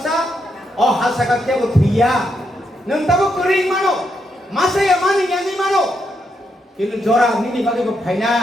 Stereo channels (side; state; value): both; normal; correlation 0.80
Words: oh hasaka kya uthia nang tabo kering mano masa ya mani yani mano kinu jora nini bage ko